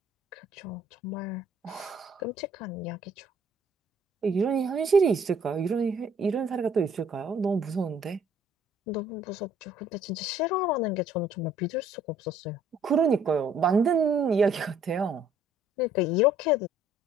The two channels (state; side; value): normal; both; correlation 0.59